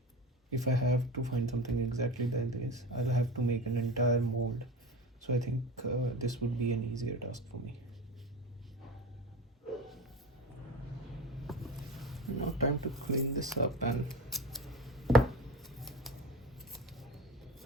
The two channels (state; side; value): normal; both; correlation 0.29